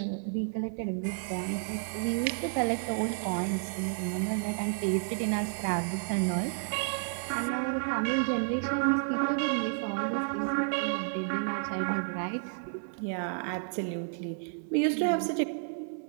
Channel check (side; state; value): left; silent; 57 dB below the other